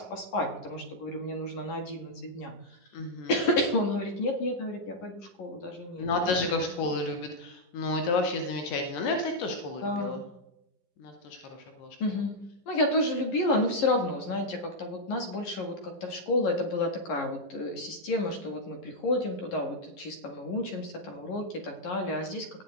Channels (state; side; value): late; right; 11 ms